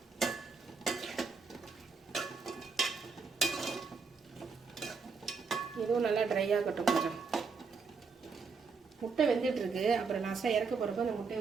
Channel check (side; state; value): left; quieter; 4.9 dB